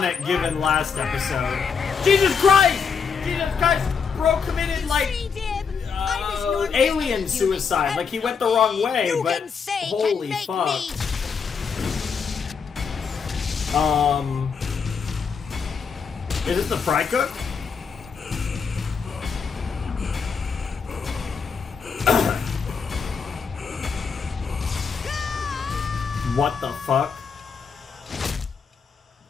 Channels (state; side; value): quieter; right; 5.9 dB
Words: given last episode. Jesus Christ! Jesus Christ! Bro committed like alien suicide. Like he went the wrong way, but holy fuck. Is it the Frycook? What the fuck?